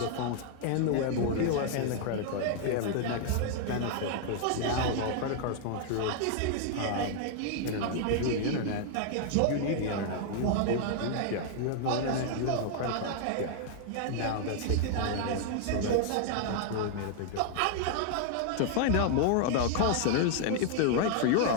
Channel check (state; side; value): different; both; correlation 0.00